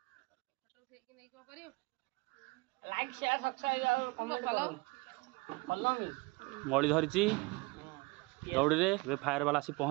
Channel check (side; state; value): left; quieter; 25.5 dB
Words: मड़ी धरी दौड़ी रे फायर वाला आसी